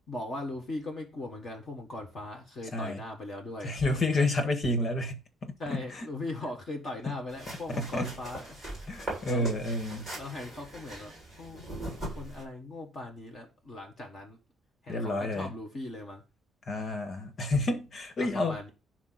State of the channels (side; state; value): both; normal; correlation 0.60